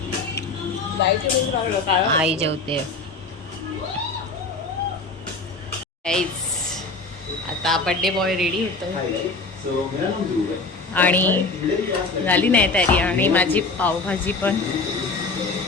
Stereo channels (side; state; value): right; quieter; 3.7 dB